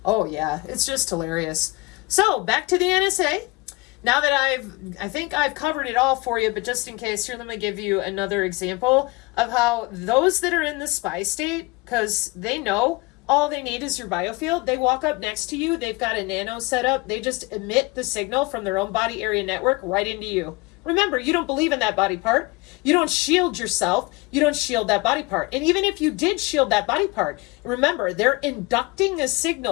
Oh yeah, it's just hilarious. So, back to the NSA. Now that I think I've covered it all for you, but just in case, here, let me give you another example of how those that are in the spy state, because they know all they need is your biofield. They walk up next to you. They've got a nano set up. They just emit the signal from their own body area network right into you. Remember, you don't believe in that body part. You don't shield yourself. You don't shield that body part. And even if you did shield that body part, remember, they're inducting a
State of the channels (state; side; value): quieter; right; 24.3 dB